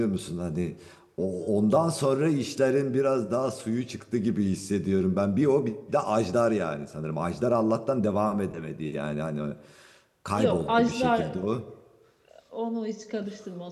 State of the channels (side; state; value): both; identical; correlation 1.00